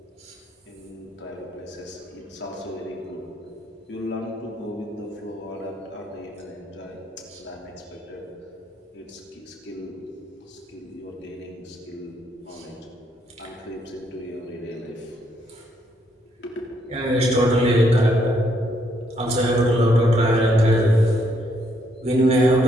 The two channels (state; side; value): normal; both; correlation 0.73